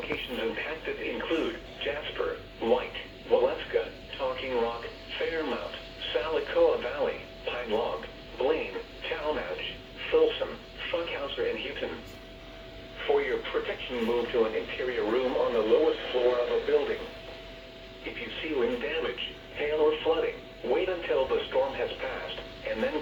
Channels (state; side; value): identical; both; correlation 1.00